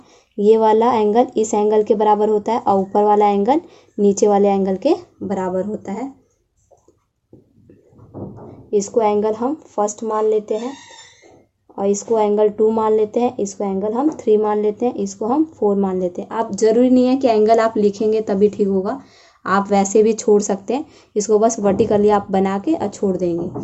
ये वाला एंगल इस एंगल के बराबर होता है, और ऊपर वाला एंगल नीचे वाले एंगल के बराबर होता है। इसको एंगल हम फर्स्ट मान लेते हैं और इसको एंगल 2 मान लेते हैं, इसको एंगल हम 3 मान लेते हैं, इसको हम 4 मान लेते हैं। आप ज़रूरी नहीं है कि एंगल आप लिखेंगे तभी ठीक होगा, आप वैसे भी छोड़ सकते हैं। इसको बस वर्टिकली आप बना के और छोड़ देंगे।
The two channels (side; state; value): both; identical; correlation 1.00